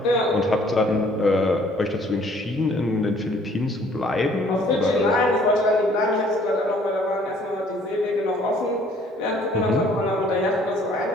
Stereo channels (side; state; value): both; normal; correlation 0.58